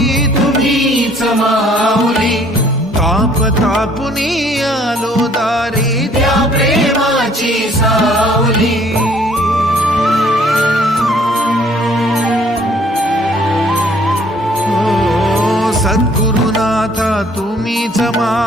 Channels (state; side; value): normal; both; correlation 0.59